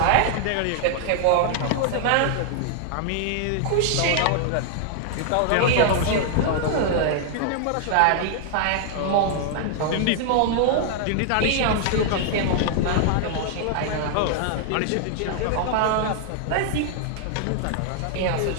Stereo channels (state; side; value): different; both; correlation 0.00